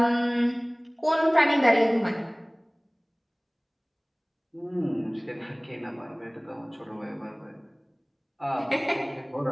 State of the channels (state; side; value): identical; both; correlation 1.00